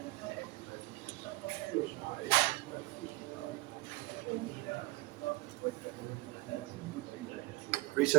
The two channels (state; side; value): quieter; left; 21.7 dB